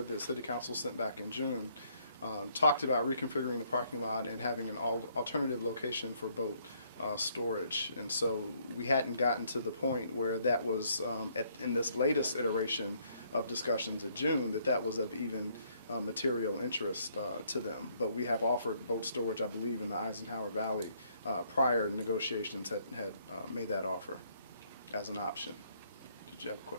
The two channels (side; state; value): both; inverted; correlation -0.68